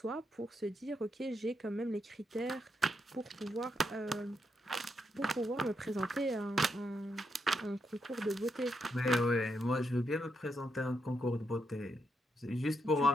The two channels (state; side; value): normal; both; correlation 0.81